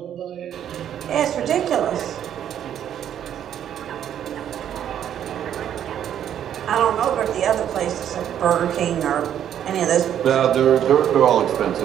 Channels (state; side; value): quieter; left; 10.0 dB